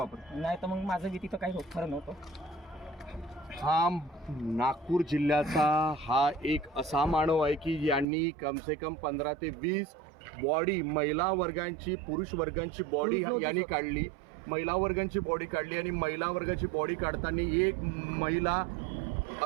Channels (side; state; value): left; drops out; at 8.1 s